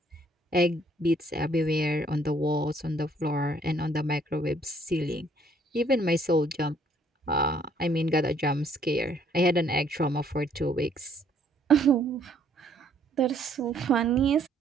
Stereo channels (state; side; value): normal; both; correlation 0.64